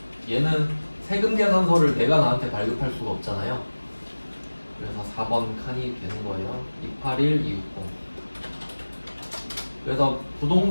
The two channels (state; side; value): inverted; both; correlation -1.00